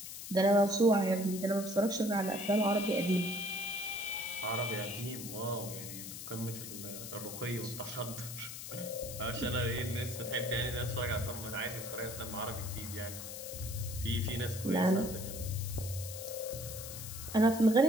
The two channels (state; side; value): noise; left; hiss, 9 dB below the sound